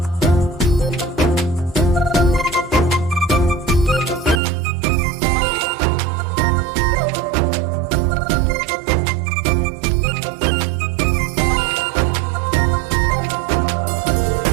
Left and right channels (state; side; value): drops out; left; at 4.4 s